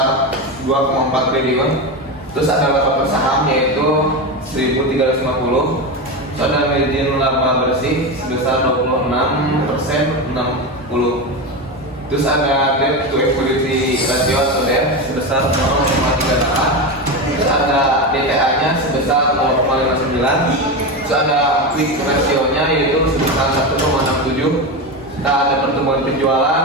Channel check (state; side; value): normal; both; correlation 0.18